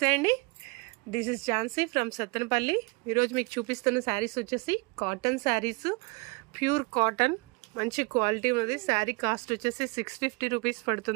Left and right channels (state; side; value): quieter; left; 29.3 dB